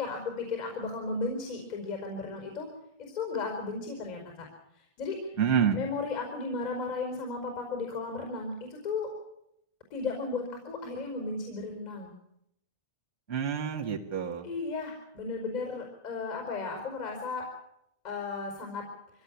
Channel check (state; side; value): late; right; 2.0 ms